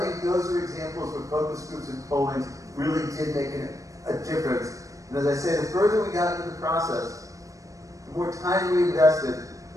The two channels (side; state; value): left; late; 0.16 ms